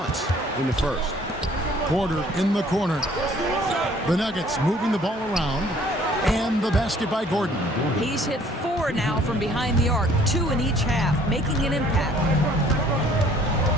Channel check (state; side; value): normal; both; correlation 0.58